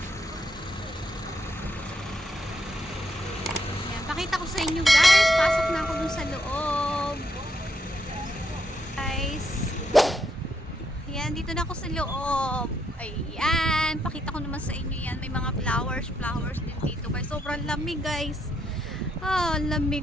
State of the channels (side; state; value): both; normal; correlation 0.77